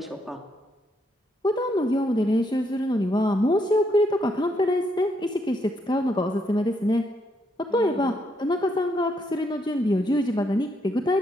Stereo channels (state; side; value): normal; both; correlation 0.76